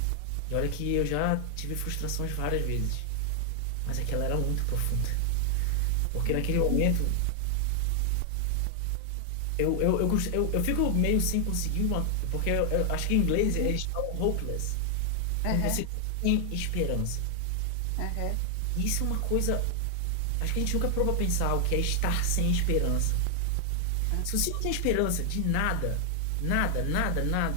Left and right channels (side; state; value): both; different; correlation 0.00